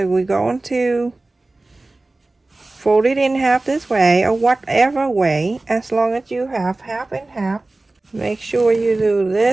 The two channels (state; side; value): quieter; left; 3.0 dB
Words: we're going to fold it in half this way, or whatever way, as long as you have half and half. Make sure you do